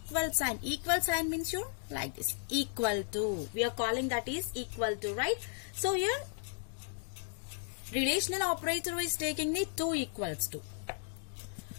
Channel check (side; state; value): right; silent; digital silence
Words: sign. Equal sign means you like this, equal to. We are calling that is equal to, right? So here relational operator is taking the 2 equals to.